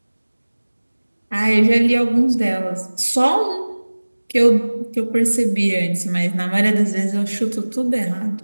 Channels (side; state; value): both; inverted; correlation -1.00